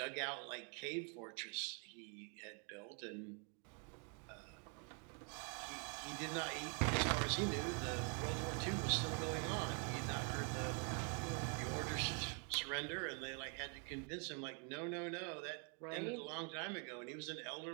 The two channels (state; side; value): quieter; left; 39.1 dB